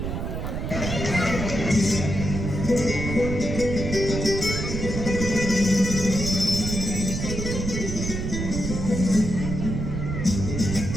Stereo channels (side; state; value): right; noise; rumble, 4 dB below the sound